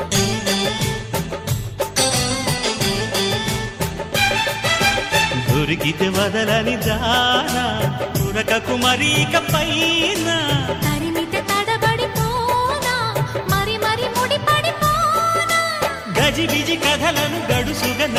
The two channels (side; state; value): both; identical; correlation 1.00